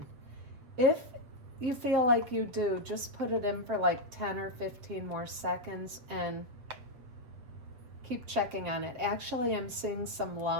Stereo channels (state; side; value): late; left; 8.0 ms